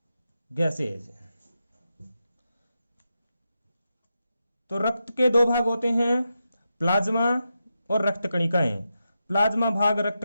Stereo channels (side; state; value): both; inverted; correlation -0.87